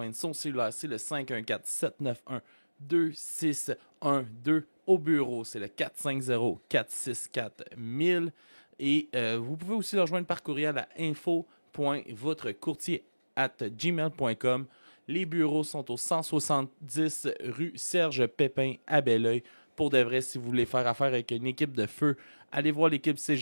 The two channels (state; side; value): inverted; both; correlation -1.00